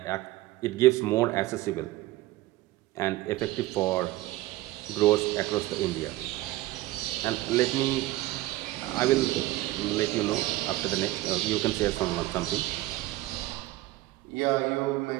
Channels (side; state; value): left; quieter; 17.2 dB